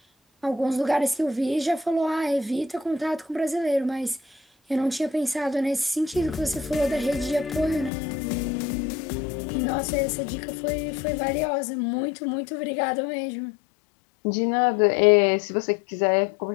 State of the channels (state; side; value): drops out; right; at 7.9 s